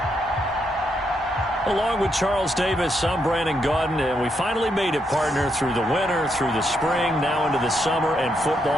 Along with Charles Davis, I'm Brandon Gaudin, and we finally made it, partner, through the winter, through the spring, now into the summer, and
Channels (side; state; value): both; normal; correlation 0.79